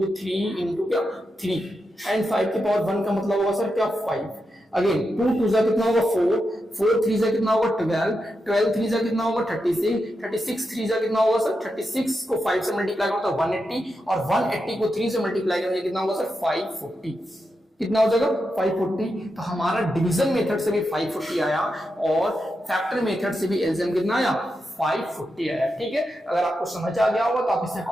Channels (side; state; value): both; normal; correlation 0.87